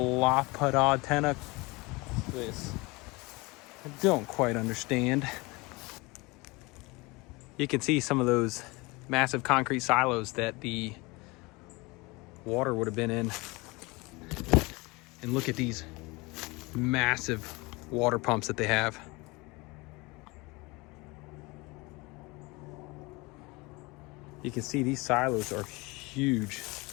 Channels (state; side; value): quieter; right; 24.7 dB